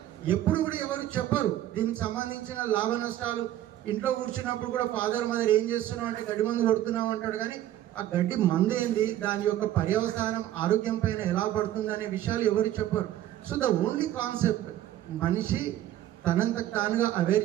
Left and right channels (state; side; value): quieter; left; 12.9 dB